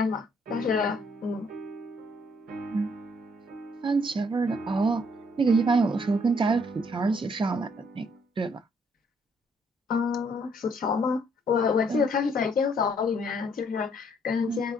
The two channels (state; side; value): normal; both; correlation 0.67